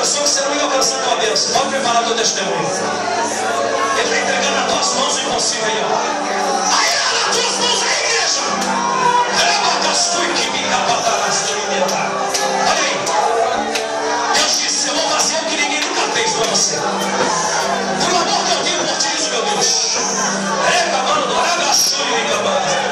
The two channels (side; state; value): both; identical; correlation 1.00